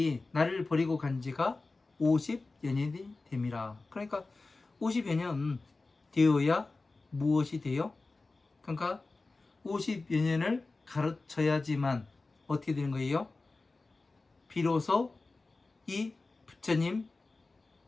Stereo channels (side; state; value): right; quieter; 3.5 dB